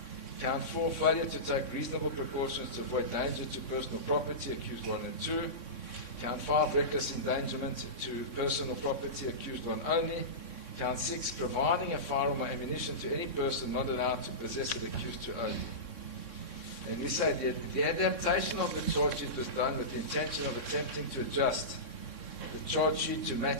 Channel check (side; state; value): right; late; 3.6 ms